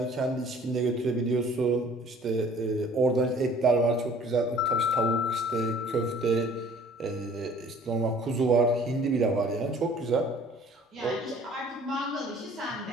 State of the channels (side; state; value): both; normal; correlation 0.52